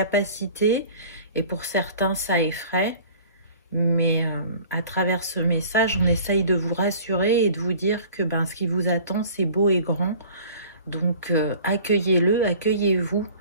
et pour certains ça effraie. Mais à travers ce message, on essaye de vous rassurer et de vous dire que ce qui vous attend, c'est beau et grand. Donc accueillez-le, accueillez-vous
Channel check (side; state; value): both; inverted; correlation -0.45